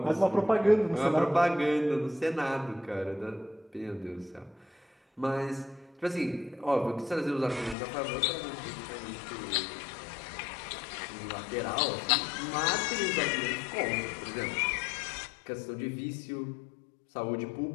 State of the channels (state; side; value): drops out; right; at 7.8 s